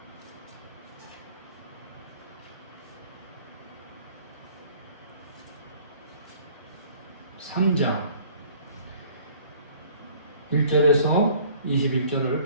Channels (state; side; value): inverted; both; correlation -0.54